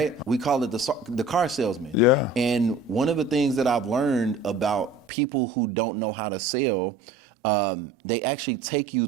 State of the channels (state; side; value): drops out; left; at 5.1 s